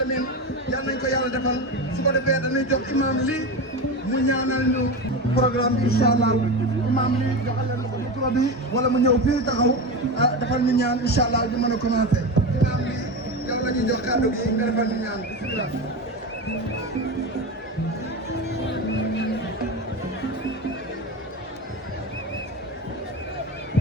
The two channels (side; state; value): both; normal; correlation 0.21